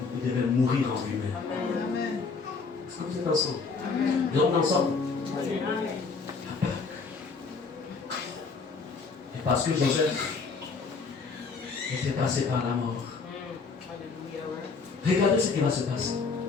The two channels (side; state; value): right; quieter; 4.7 dB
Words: mourir en lui-même. Est-ce que vous êtes ensemble? Nous sommes ensemble. Et parce que Joseph était passé par la mort. Regardez ce qui va se passer.